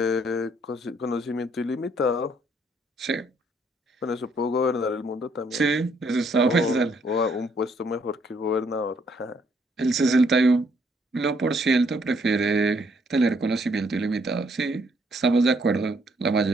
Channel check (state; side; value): normal; both; correlation 0.69